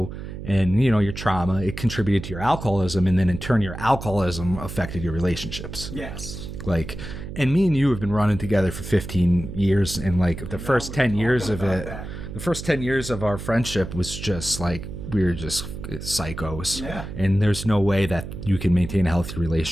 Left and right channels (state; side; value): noise; right; hum, 9 dB below the sound